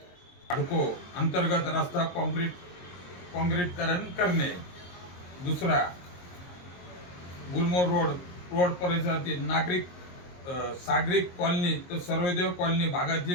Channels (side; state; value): right; late; 22 ms